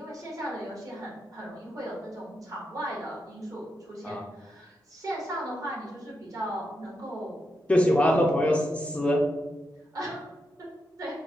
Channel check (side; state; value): both; normal; correlation 0.85